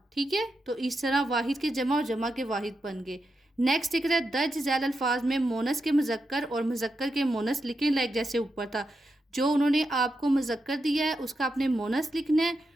ٹھیک ہے، تو اس طرح واحد کے جمع اور جمع کے واحد بن گئے. نیکسٹ دیکھ رہا ہے درج ذیل الفاظ میں مونس کے مذکر اور مذکر کے مونس لکھیں لائک جیسے اوپر تھا. جو انہوں نے آپ کو مذکر دیا ہے اس کا آپ نے مونس لکھنا ہے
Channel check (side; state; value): both; normal; correlation 0.87